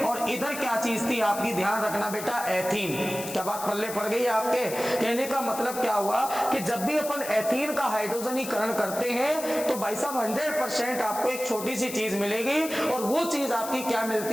और इधर क्या चीज थी आपकी, ध्यान रखना बेटा एथीन। क्या बात पल्ले पड़ गई आपके, कहने का मतलब क्या हुआ कि जब भी अपन एथीन का हाइड्रोजनीकरण करते हैं तो भाई साहब 100% आपको एक छोटी सी चीज मिलेगी, और वो चीज आपकी क्या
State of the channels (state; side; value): noise; left; hiss, 10 dB below the sound